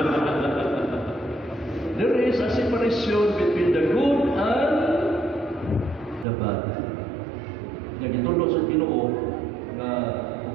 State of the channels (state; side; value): drops out; left; at 6.2 s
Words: There is a separation between the good and the bad. Yang itulog sa Ginoo na